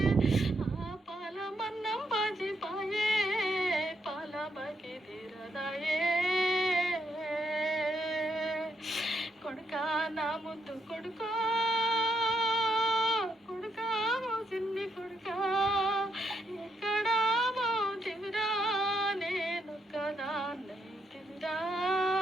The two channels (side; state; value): both; normal; correlation 0.78